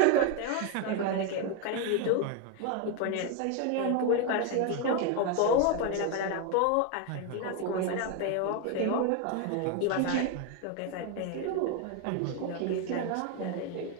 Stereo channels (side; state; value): both; different; correlation 0.01